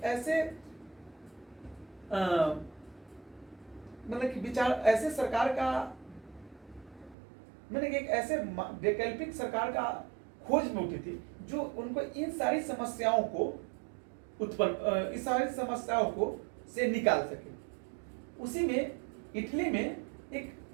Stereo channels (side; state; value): left; drops out; at 7.2 s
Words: ऐसे मतलब कि विचार, ऐसे सरकार का, मैंने एक ऐसे वैकल्पिक सरकार का खोज में उठी थी जो उनको इन सारी समस्याओं को इस सारी समस्याओं को से निकाल सके। उसी में इटली में एक